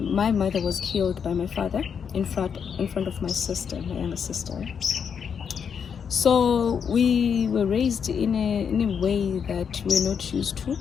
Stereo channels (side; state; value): right; quieter; 7.0 dB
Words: my mother was killed by my father in front of my sister, my younger sister. So we were raised in a way that we're not used to.